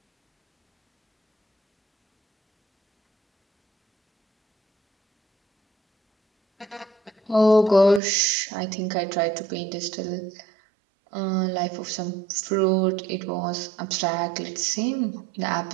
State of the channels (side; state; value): left; drops out; at 8.0 s